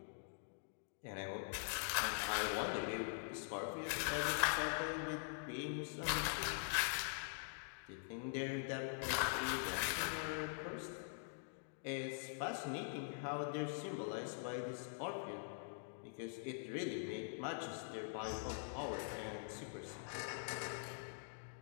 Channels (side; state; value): right; silent; digital silence